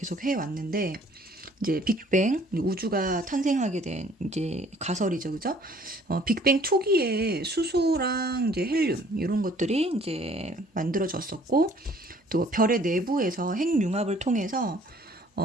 해왔는데, 이제 빅뱅, 우주가 탄생하게 된 이제 가설이죠, 그죠? 빅뱅 초기에 수소랑 이제 헬륨, 이런 것들이 이제 만들어졌었고, 또 별의 내부에서 핵융합을 통해서,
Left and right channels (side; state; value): both; normal; correlation 0.57